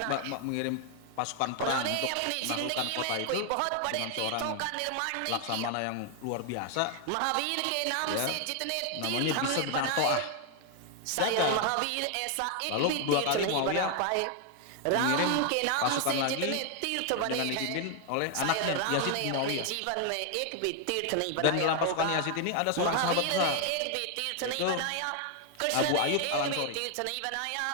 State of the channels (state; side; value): different; both; correlation 0.00